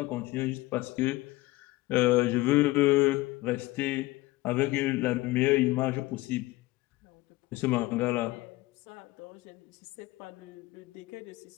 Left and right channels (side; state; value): right; quieter; 19.4 dB